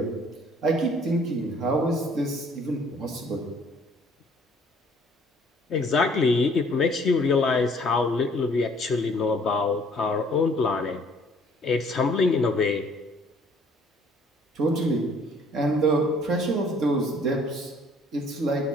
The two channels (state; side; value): normal; both; correlation 0.58